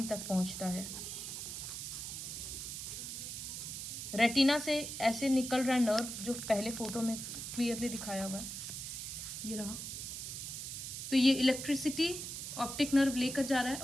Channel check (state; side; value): noise; right; hiss, 6 dB below the sound